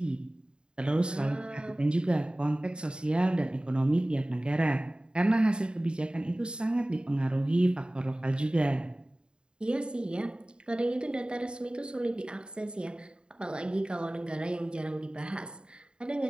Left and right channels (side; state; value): left; late; 0.050 ms